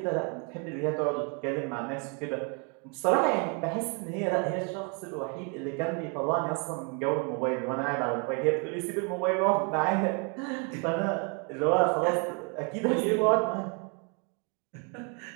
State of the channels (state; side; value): quieter; left; 36.0 dB